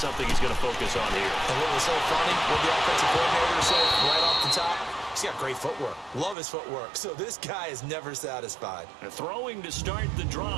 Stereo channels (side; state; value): left; drops out; at 6.4 s